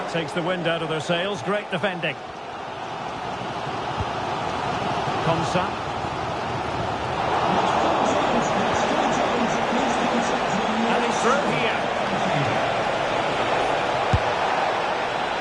takes the wind out of their sails. Great defending. Konsa. And he's through here.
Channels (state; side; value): identical; both; correlation 1.00